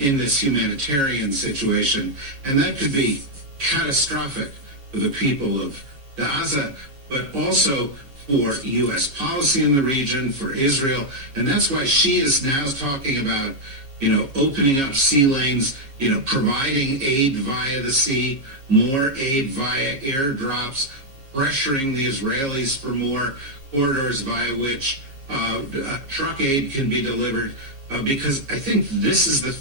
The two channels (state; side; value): late; left; 7.4 ms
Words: in this humanitarian situation. And that could be catastrophic for the people of Gaza, but also for U.S. policy in the region, for Israel. And that's why she is now talking about, opening up sea lanes, providing aid via the sea, more aid via airdrops, pressuring the Israelis for more corridors via which truck aid can be delivered, because I think this is the